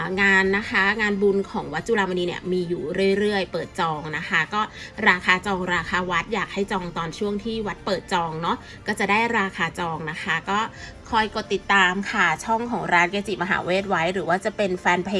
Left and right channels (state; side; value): identical; both; correlation 1.00